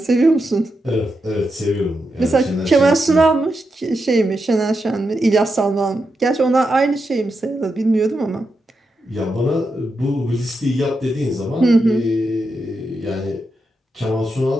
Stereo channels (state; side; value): normal; both; correlation 0.86